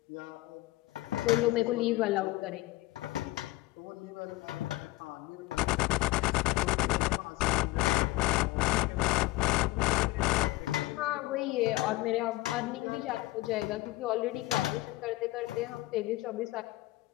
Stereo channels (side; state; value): right; quieter; 19.4 dB